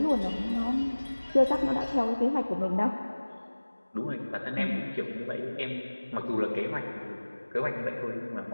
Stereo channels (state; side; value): inverted; both; correlation -1.00